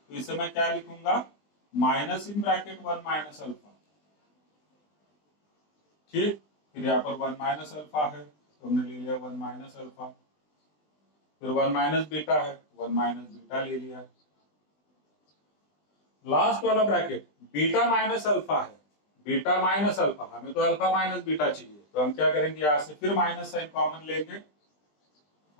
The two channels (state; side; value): late; right; 20 ms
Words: तो इसे मैं क्या लिखूंगा? Minus in bracket 1 minus alpha, ठीक। फिर यहाँ पर 1 माइनस अल्फा है तो हमने ले लिया 1 माइनस अल्फा, फिर 1 माइनस बीटा है, 1 माइनस बीटा ले लिया। लास्ट वाला ब्रैकेट बीटा माइनस अल्फा है, बीटा माइनस अल्फा, हमें तो अल्फा माइनस बीटा चाहिए, तो हम क्या करेंगे? यहां से फिर माइनस साइन कॉमन लेंगे